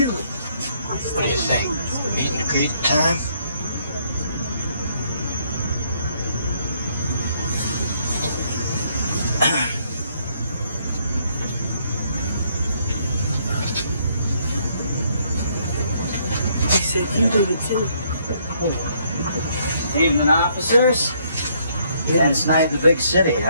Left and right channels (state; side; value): inverted; both; correlation -0.69